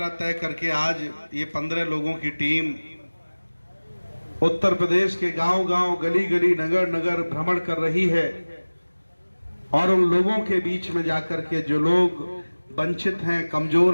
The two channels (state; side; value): inverted; both; correlation -1.00